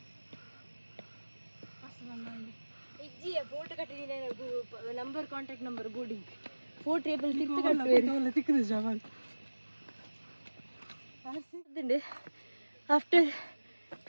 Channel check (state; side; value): inverted; both; correlation -1.00